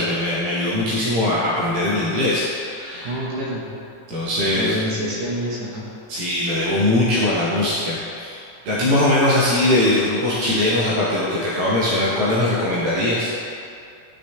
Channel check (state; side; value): late; left; 18 ms